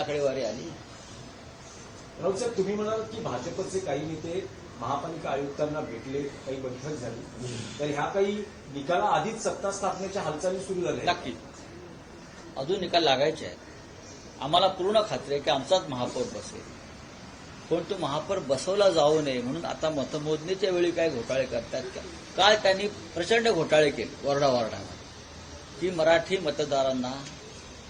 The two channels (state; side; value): identical; both; correlation 1.00